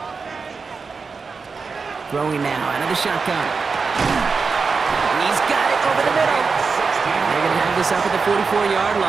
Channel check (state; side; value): quieter; left; 4.8 dB